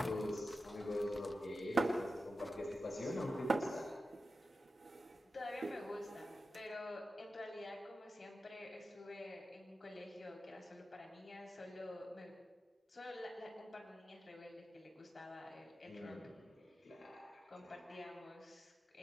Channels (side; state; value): both; normal; correlation 0.92